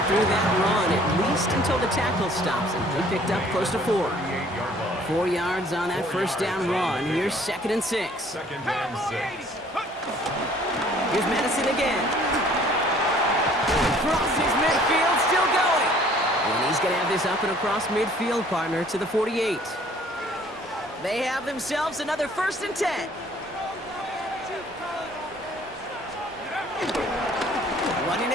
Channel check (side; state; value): both; normal; correlation 0.56